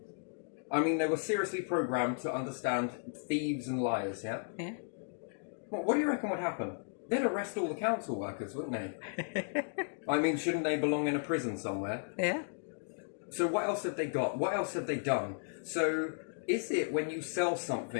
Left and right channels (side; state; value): right; silent; digital silence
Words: I mean, they were seriously programmed to understand thieves and liars, yeah? Yeah. What do you reckon would happen? They'd arrest all the council workers, wouldn't they? I mean, shouldn't they belong in a prison somewhere? Yeah. So what else have they got? What else have they done? So is it when you sell